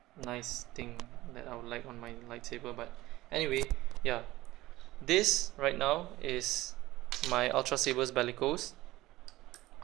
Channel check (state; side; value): quieter; left; 17.6 dB